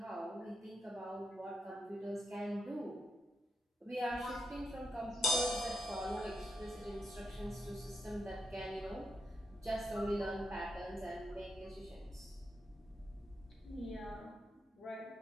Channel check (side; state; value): both; normal; correlation 0.85